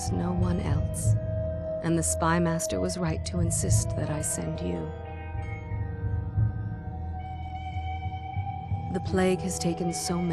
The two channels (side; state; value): both; identical; correlation 1.00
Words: no one else, and the Spy Master was right to insist that I send you. The plague has taken so